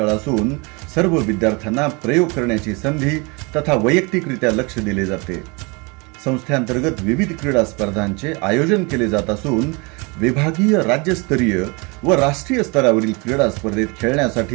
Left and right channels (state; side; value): quieter; left; 29.1 dB